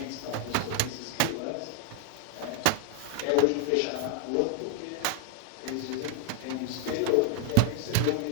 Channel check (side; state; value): both; different; correlation 0.00